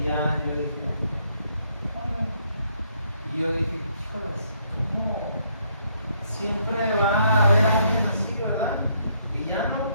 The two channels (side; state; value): both; inverted; correlation -0.71